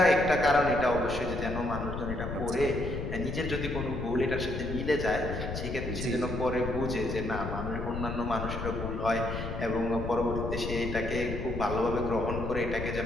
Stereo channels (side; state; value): left; noise; rumble, 5 dB below the sound